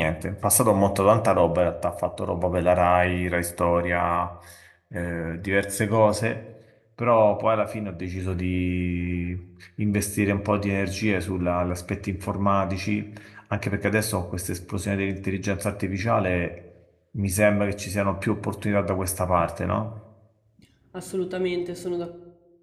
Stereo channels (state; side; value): identical; both; correlation 1.00